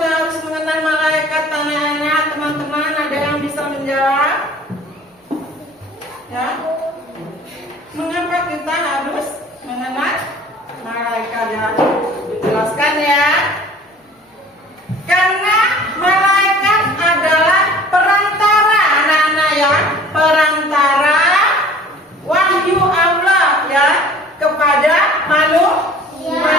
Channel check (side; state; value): both; normal; correlation 0.48